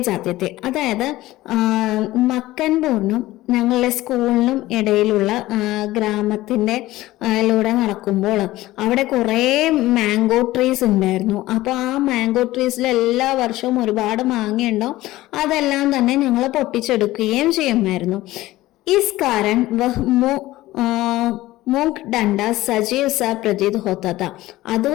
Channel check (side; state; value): right; quieter; 17.0 dB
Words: जाते थे. അതായത് മക്കൻപൂരിനും ഞങ്ങളുടെ സ്കൂളിനും ഇടയിലുള്ള ഗ്രാമത്തിന്റെ ലൂടെ നടക്കുമ്പോൾ അവിടെ കുറെ മാംഗോ ട്രീസ് ഉണ്ടായിരുന്നു. അപ്പൊ ആ മാംഗോ ട്രീസിൽ എല്ലാ വർഷവും ഒരുപാട് മാങ്ങയുണ്ടാവും. അതെല്ലാം തന്നെ ഞങ്ങൾ പൊട്ടിച്ചെടുക്കുകയും ചെയ്യുമായിരുന്നു. इस कारण वह മൂക്ക് ഡണ്ട സജീവ് സ പ്രതീത് ഹോത്ത.